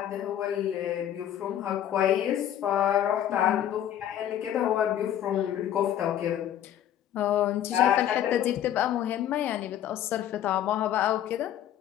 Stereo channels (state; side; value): quieter; right; 11.1 dB